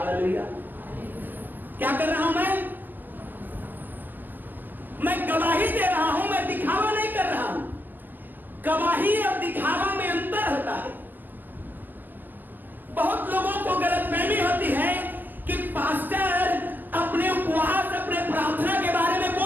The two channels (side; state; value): left; late; 0.087 ms